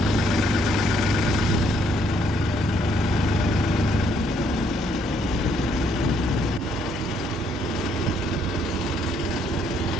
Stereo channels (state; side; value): normal; both; correlation 0.69